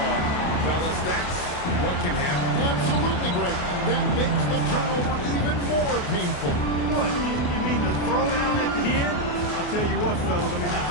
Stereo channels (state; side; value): late; right; 28 ms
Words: fellas, that's what can happen. Absolutely great. That makes the turnover even more painful. What, you mean the throwdown at the end? I'll tell you what, fellas, I mean, the